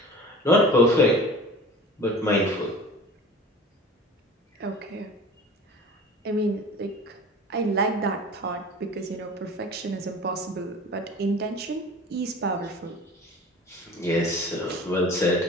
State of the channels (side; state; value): both; normal; correlation 0.40